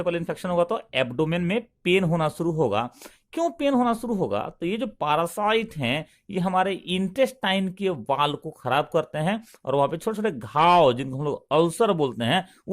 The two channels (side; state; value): both; identical; correlation 1.00